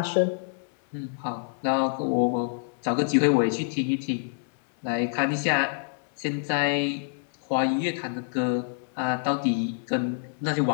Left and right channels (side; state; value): right; silent; 58 dB below the other